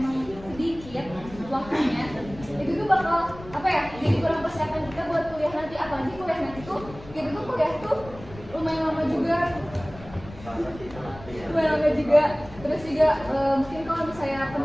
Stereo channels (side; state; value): left; noise; rumble, 17 dB below the sound